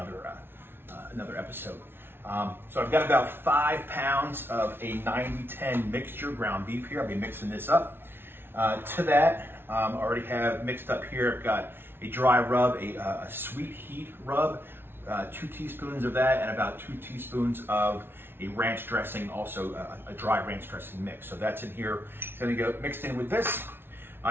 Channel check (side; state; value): left; late; 0.11 ms